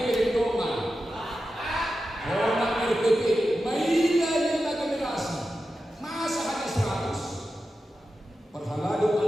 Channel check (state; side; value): normal; both; correlation 0.91